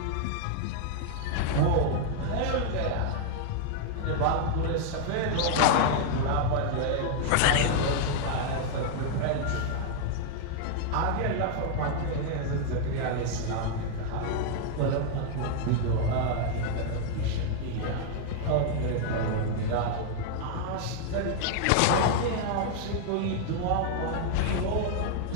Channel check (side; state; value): both; different; correlation 0.00